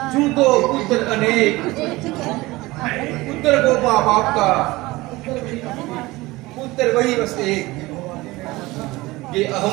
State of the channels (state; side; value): quieter; left; 20.4 dB